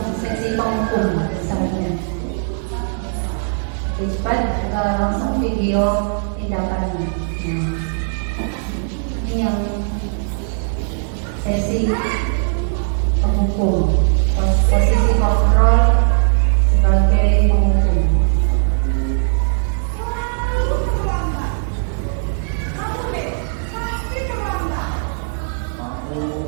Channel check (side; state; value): left; silent; digital silence